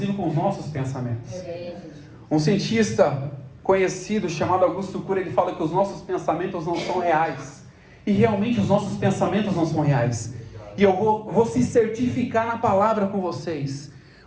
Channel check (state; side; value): identical; both; correlation 1.00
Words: com os nossos pensamentos. Um cientista conhecido chamado Augusto Cury, ele fala que os nossos pensamentos não são reais, e realmente os nossos pensamentos não são reais. E eu vou se certificar na palavra com vocês: